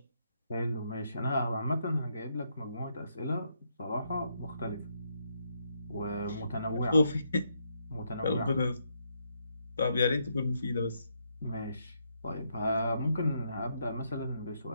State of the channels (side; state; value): both; inverted; correlation -0.77